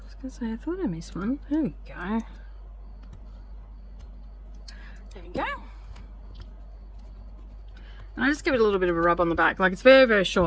was going to say, I thought I missed one. There we go. There we go. And I just give it a little bit of a rub on the back. Like, it's very, very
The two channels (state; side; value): identical; both; correlation 1.00